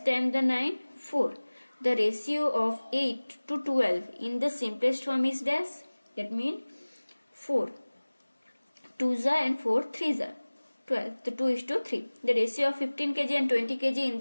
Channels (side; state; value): both; inverted; correlation -1.00